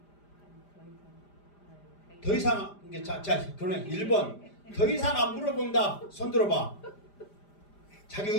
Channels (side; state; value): right; late; 5.0 ms